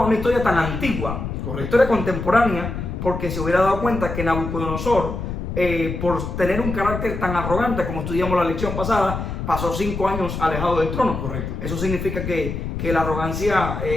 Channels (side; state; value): left; noise; rumble, 5 dB below the sound